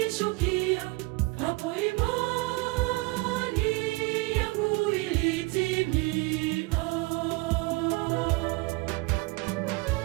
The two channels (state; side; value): quieter; left; 24.3 dB